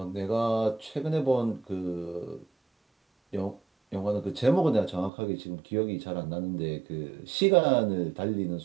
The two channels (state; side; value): drops out; left; at 5.1 s